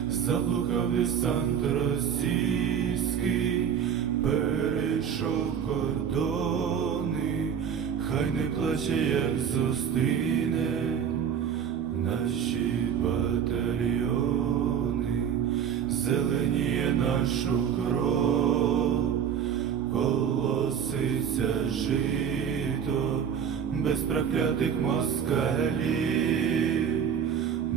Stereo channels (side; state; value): left; quieter; 8.1 dB